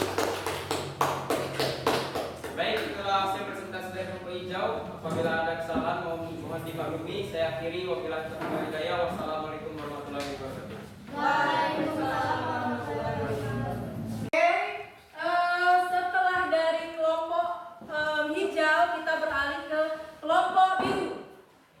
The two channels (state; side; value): identical; both; correlation 1.00